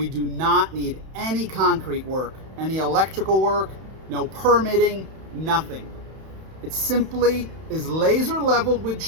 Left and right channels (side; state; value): left; late; 31 ms